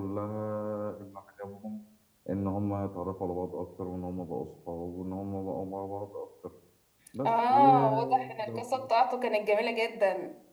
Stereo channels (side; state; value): both; identical; correlation 1.00